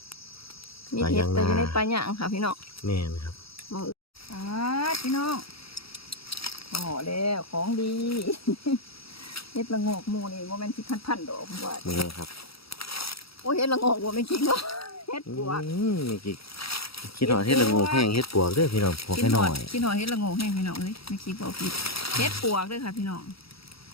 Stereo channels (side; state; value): right; late; 0.76 ms